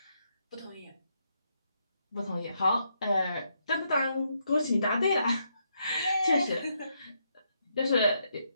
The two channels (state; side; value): inverted; both; correlation -0.78